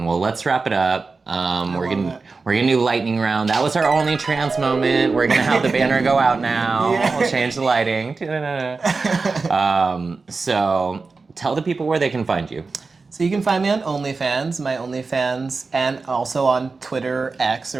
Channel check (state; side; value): quieter; left; 4.2 dB